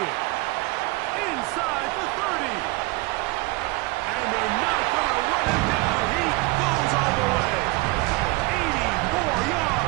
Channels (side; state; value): left; quieter; 23.0 dB